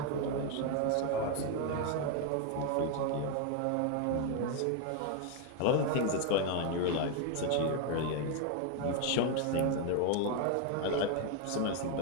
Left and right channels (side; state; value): both; different; correlation 0.01